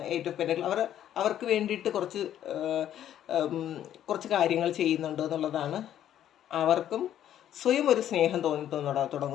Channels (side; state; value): right; quieter; 11.1 dB